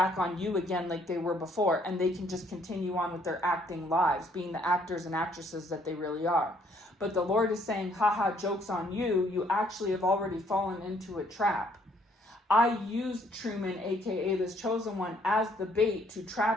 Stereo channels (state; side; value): normal; both; correlation 0.66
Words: on you again like they were before, and they can just continue on with their acting lives, being the actors and actresses that they really are. But the Lord is saying, haha, joke's on you. You actually have already fallen into a trap. I used Truman, aka this chosen one, as the bait to